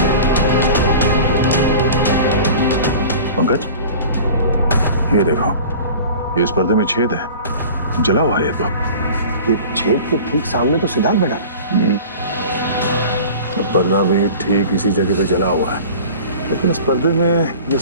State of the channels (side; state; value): both; inverted; correlation -0.40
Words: पंकज ये देखो, ये इस पर्दे में छेद है, जला हुआ है। तो ये छेद के ठीक सामने तो सिद्धार्थ बैठा है। पर्दा भी ठीक इसी जगह पे जला हुआ है, लेकिन इस पर्दे में ये